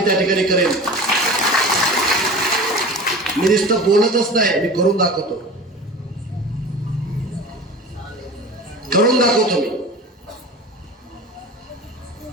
त्या ठिकाणी करेन. मी नुसतं बोलतच नाही, मी करून दाखवतो.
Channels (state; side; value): normal; both; correlation 0.35